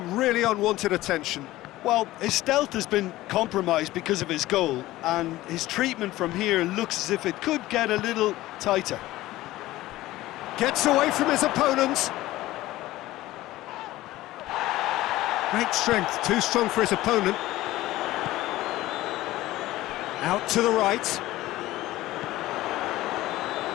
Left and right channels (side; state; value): right; quieter; 16.7 dB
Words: really unwanted attention. Well, his stealth has been compromised because of his goal, and his treatment from here looks as if it could get a little tighter. Gets away from his opponent. Great strength, too strong for his opponent. Out to the right.